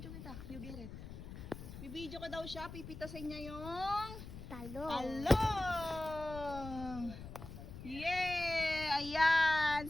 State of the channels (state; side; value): noise; left; rumble, 11 dB below the sound